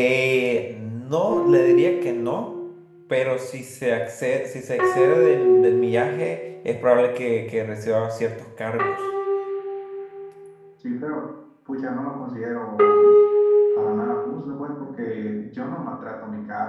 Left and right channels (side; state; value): both; identical; correlation 1.00